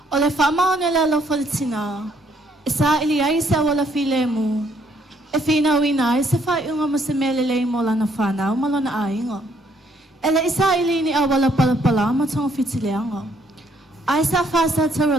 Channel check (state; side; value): normal; both; correlation 0.68